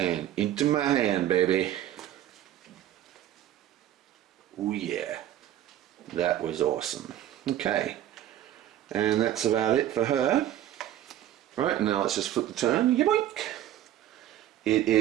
into my hand, baby. Oh yeah. That was awesome. Okay. And that's about it for her. Right, now let's just flip the turn. Yoink! It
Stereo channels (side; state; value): left; quieter; 12.1 dB